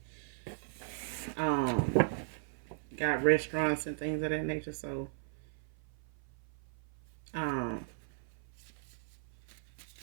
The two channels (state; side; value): silent; left; 53 dB below the other